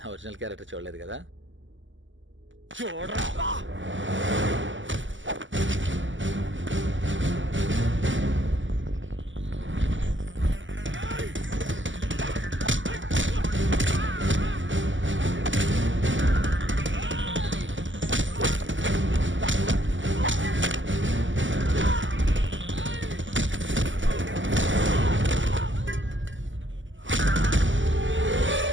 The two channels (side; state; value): left; late; 0.55 ms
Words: ఒరిజినల్ క్యారెక్టర్ చూడలేదు కదా. చూడరా.